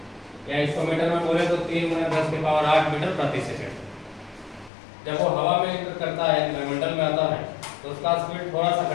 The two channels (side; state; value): right; drops out; at 4.7 s